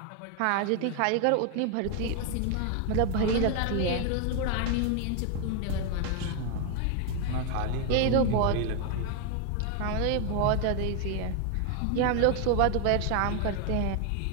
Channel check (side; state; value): both; different; correlation 0.00